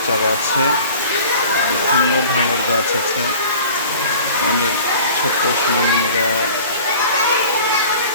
চারা আছে, বিভিন্ন ধরনের গাছ আছে। আমাদের ছোট্ট সোনামণিরা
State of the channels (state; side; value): inverted; both; correlation -0.44